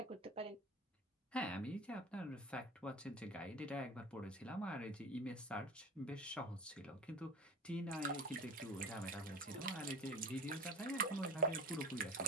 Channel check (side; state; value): both; normal; correlation 0.35